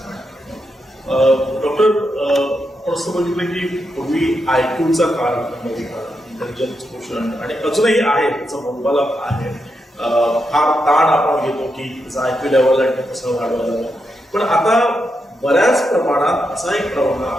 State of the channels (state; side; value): normal; both; correlation 0.84